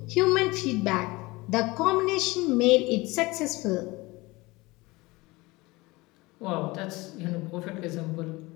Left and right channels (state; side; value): quieter; right; 22.2 dB